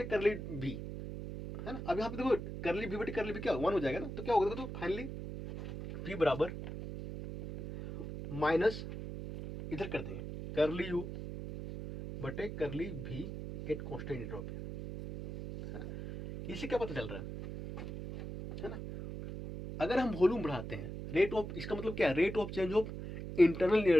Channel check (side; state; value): right; noise; hum, 7 dB below the sound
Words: करली भी, है ना। अब यहाँ पे देखो करली भी बटे करली भी क्या वन हो जाएगा ना, तो क्या होगा, देखो तो फाइनली पी बराबर माइनस इधर कर देंगे करली यू बटे करली भी एट कांस्टेंट एंट्रोपी, है ना। इससे क्या पता चल रहा है ना, अगर हम वॉल्यूम बढ़ाते हैं, रेट ऑफ, इसका मतलब क्या है, rate of change of internal